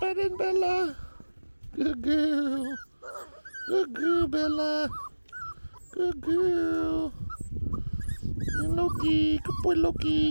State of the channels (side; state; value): both; inverted; correlation -1.00